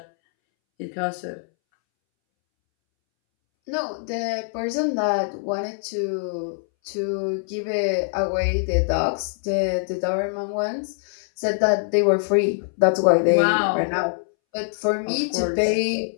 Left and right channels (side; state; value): right; silent; 63 dB below the other